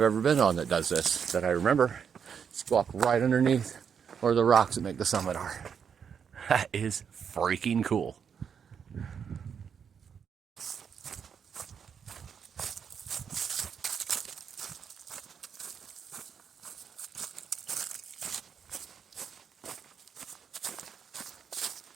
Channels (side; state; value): left; quieter; 7.2 dB